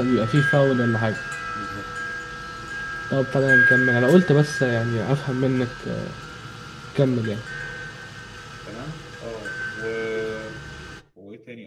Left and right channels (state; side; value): identical; both; correlation 1.00